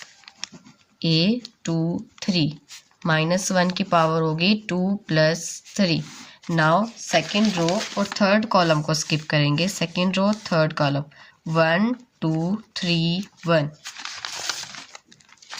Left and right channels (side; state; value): both; identical; correlation 1.00